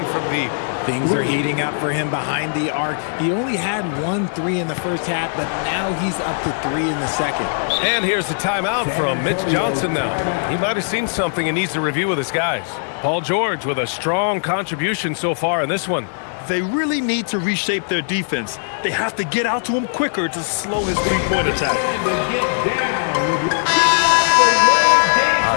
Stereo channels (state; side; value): silent; right; digital silence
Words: from deep. Things are heating up for him behind the arc. He only had 1 3 in the first half, but now he's up to 3 in the second. And here's the timeout from Mitch Johnson now. He might have seen something and needs to review with his guys. Paul George with a strong contribution so far in this one. They really need to reshape their defense. They have to get out to him quicker to slow his three-point attack.